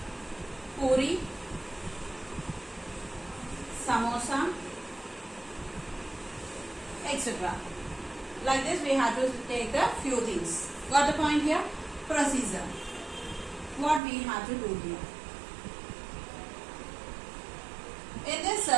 puri, samosa, etc. Like this we have to take a few things. Got the point here? Procedure. What we have to do here? In this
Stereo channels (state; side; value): drops out; left; at 14.0 s